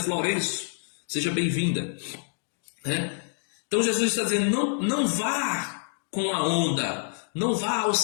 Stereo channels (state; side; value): silent; right; digital silence